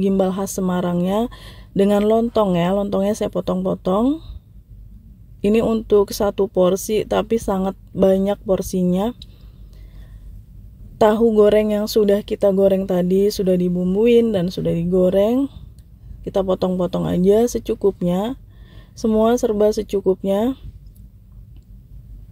gimbal khas Semarangnya dengan lontong ya. Lontongnya saya potong-potong. Ini untuk 1 porsi tapi sangat banyak porsinya. Tahu goreng yang sudah kita goreng tadi sudah dibumbuin dan sudah digoreng. Kita potong-potong aja secukupnya. Semua serba secukupnya.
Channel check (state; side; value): identical; both; correlation 1.00